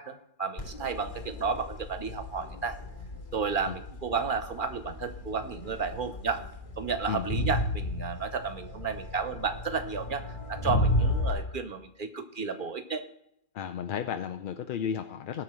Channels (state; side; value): late; right; 2.4 ms